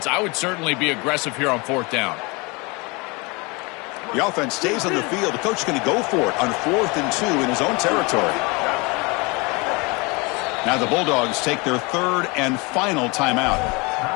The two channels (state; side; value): quieter; right; 27.4 dB